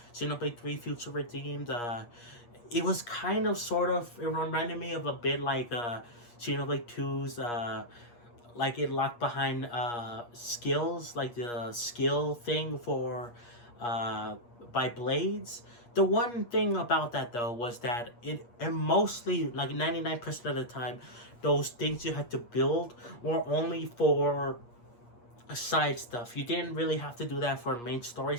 Xenoblade 3 Future Redeemed. It was kind of sort of, it reminded me of a bit like Xenoblade 2's, like it locked behind skills, like the skill thing for by blades. The one thing about that though was that and mostly like 99% of the time, those things you had to build were only for side stuff. You didn't really have to do that for main story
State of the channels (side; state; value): right; late; 8.4 ms